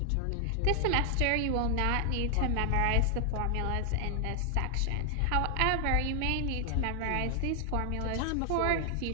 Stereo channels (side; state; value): both; different; correlation 0.00